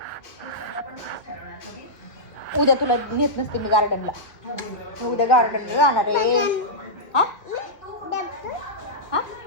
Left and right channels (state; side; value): late; right; 1.5 ms